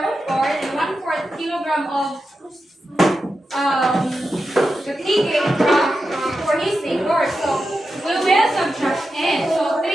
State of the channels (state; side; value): normal; both; correlation 0.90